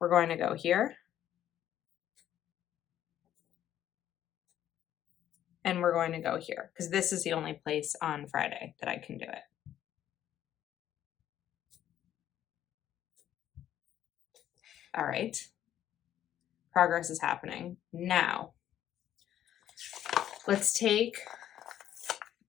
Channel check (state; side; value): quieter; right; 11.3 dB